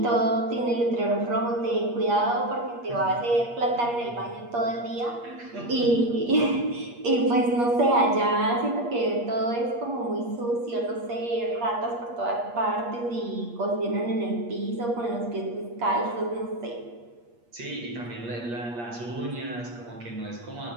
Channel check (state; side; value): late; left; 8.4 ms